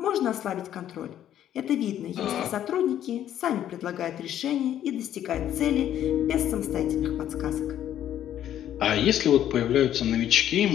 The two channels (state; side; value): quieter; right; 11.1 dB